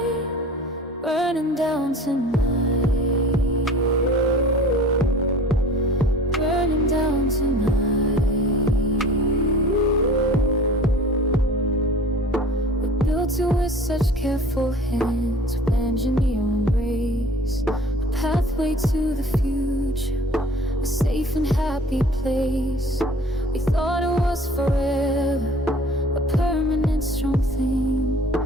burning down tonight, burning down tonight. We built it with such careful hands, with engineering grace, a pathway to the future, a safe and happy place. We thought it was forever, a permanent strong thing,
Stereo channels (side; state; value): both; normal; correlation 0.46